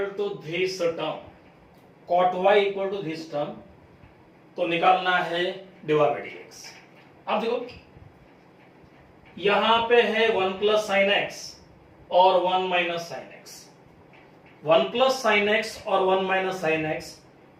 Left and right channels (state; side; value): identical; both; correlation 1.00